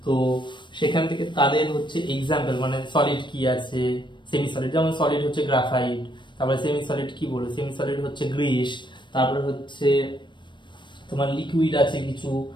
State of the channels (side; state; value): right; late; 0.22 ms